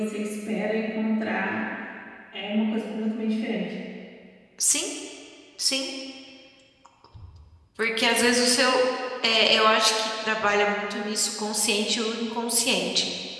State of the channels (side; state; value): both; identical; correlation 1.00